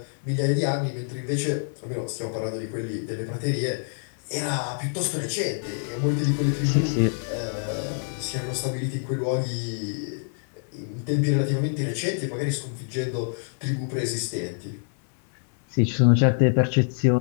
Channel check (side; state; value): right; silent; 56 dB below the other